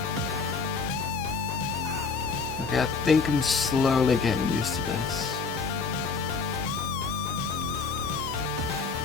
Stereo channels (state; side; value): quieter; right; 4.9 dB